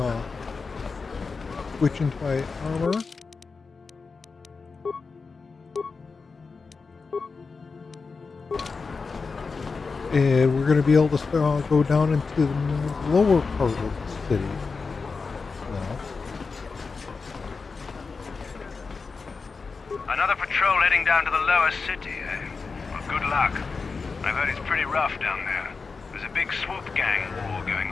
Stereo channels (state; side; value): quieter; right; 4.6 dB